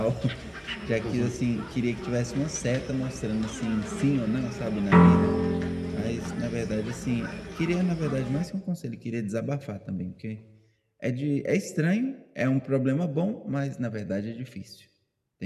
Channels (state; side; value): identical; both; correlation 1.00